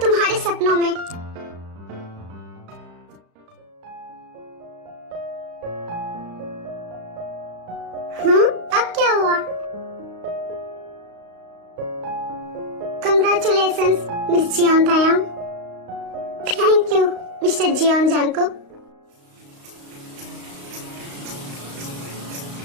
तुम्हारे सपनों में। अब क्या हुआ? Congratulations miss Jeon Taeyang. Thank you mister Jeon Jungkook.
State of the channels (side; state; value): left; late; 35 ms